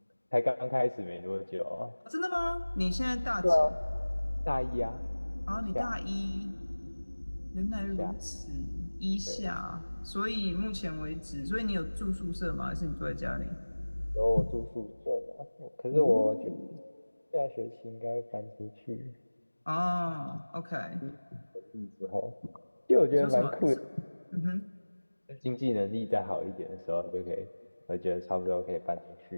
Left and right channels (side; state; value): both; inverted; correlation -1.00